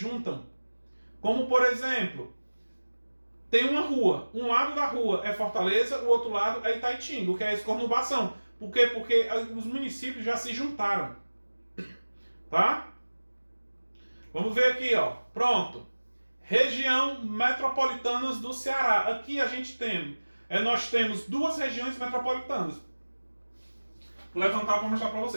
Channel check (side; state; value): both; inverted; correlation -1.00